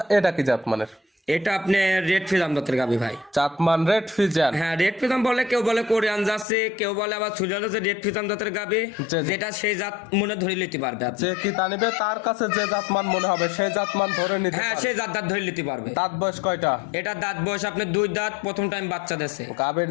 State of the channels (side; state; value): right; drops out; at 6.5 s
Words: এটা কি জাতমানের? এটা আপনি রেড ফিজাম জাতের গাভি ভাই। জাতমান রেড ফিজিয়ান। হ্যাঁ রেড ফিজাম বলে, কেউ বলে কোরিয়ান যাচ্ছে, কেউ বলে আবার সুজাতে রেড ফিজাম জাতের গাভি, জি। যেটা সেই জাত মনে ধরে নিতে পারবে আপনি। যে কি তা নিবে তার কাছে যে জাতমান মনে হবে সেই জাতমান ধরে নিতে হ্যাঁ পারবে। সেই জাত ধরে নিতে পারবে। দাঁত বয়স কয়টা? এটা দাঁত বয়স আপনার 2 দাঁত, প্রথম টাইম বাচ্চা দেশে। গাবির